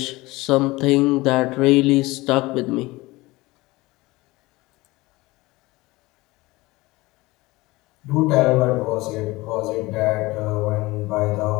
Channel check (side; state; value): right; quieter; 21.0 dB